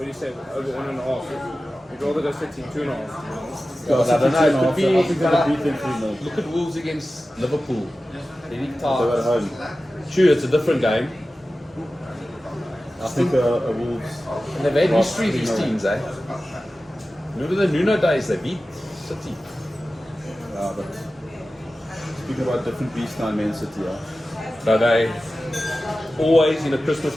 do you say, over 1.5. You'd rather go City 2.5. Yeah, I don't know, it could I be- think they'll beat them 3-0. Look at Wolves against Liverpool. Very They're at tight. home. True, it's a different game. I think a Wolves. And they've had Lost history, these 3-0. teams, eh? Remember the Nuno days, they beat City. But speaking about different beasts now in Man City, So they always in a Christmas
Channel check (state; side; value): normal; both; correlation 0.95